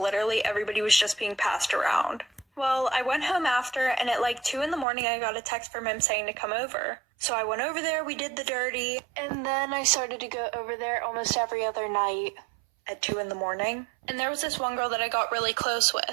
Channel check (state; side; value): drops out; left; at 4.9 s